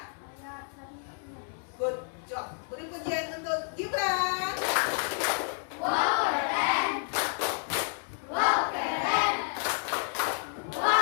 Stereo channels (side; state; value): right; silent; 55 dB below the other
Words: ayat 1. Good job. Beri pujian untuk Gibran. Wow, keren. Wow, keren.